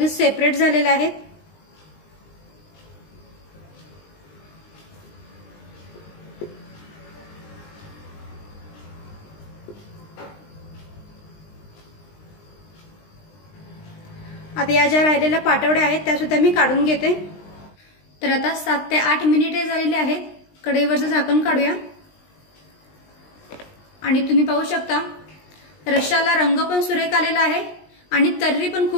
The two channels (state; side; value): late; right; 20 ms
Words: सेपरेट झालेल्या आहेत। आता या ज्या राहिलेल्या पाटवड्या आहेत त्या सुद्धा मी काढून घेते। तर आता 7 ते 8 मिनिटे झालेली आहेत। कढईवरचं झाकण काढूया आणि तुम्ही पाहू शकता रश्शाला रंग पण सुरेख आलेला आहे आणि तर्री पण